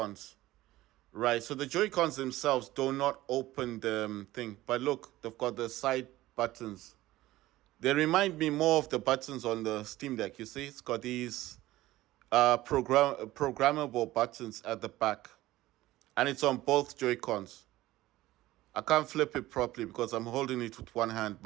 Right. So the Joy-Cons themselves do not open the thing, but look, they've got the side buttons. They remind me more of the buttons on the Steam Deck. You see, it's got these programmable buttons at the back, and it's on both Joy-Cons. I can't flip it properly because I'm holding it with one hand,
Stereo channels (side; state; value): left; quieter; 16.6 dB